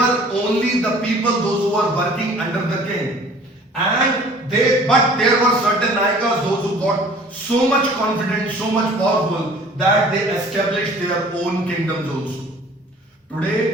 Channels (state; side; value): normal; both; correlation 0.50